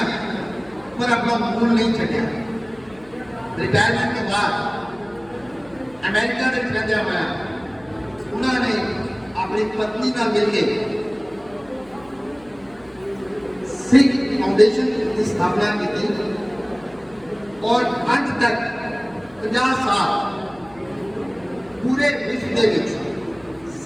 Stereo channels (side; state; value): left; noise; hum, 26 dB below the sound